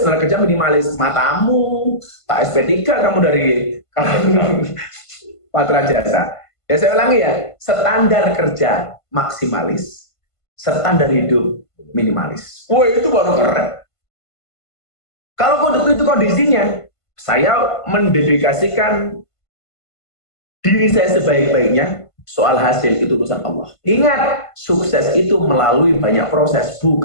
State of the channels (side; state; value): right; late; 1.5 ms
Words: kerja minimalis. Matamu, tak SP3 kamu dari Patra Jasa. Ya saya ulangi ya, standar kerja maksimalis, standar hidup minimalis. Wah itu baru keren. Kalau itu kondisinya, saya mendedikasikan diri saya sebaik-baiknya, soal hasil itu urusan Allah. Ingat, sukses itu melalui banyak proses,